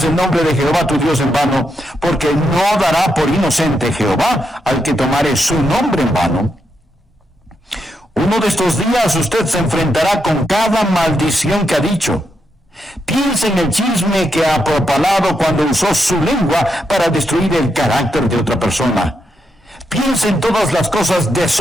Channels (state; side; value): normal; both; correlation 0.82